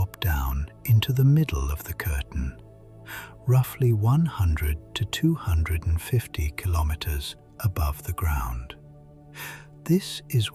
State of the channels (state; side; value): identical; both; correlation 1.00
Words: down into the middle of the curtain, roughly 100 to 250 kilometers above the ground. This is